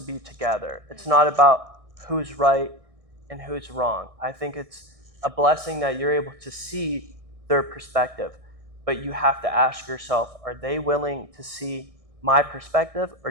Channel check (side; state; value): left; late; 1.6 ms